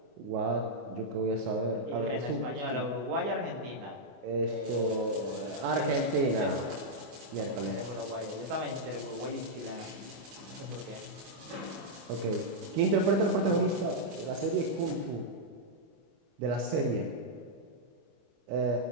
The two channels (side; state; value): left; late; 25 ms